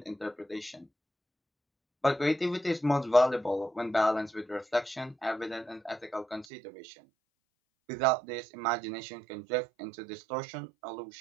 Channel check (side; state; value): left; drops out; at 6.5 s